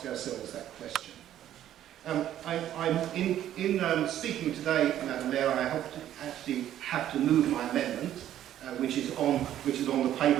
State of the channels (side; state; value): left; quieter; 11.7 dB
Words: ourselves that question. I'm in speaking today, Madam Mayor, I actually have to move my amendment, which is on the paper.